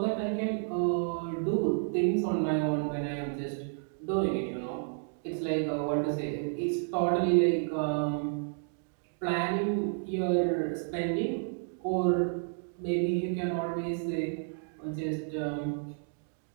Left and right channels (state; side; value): silent; left; digital silence